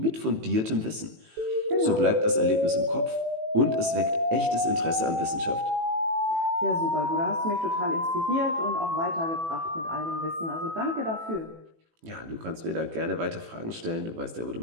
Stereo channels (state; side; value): late; left; 18 ms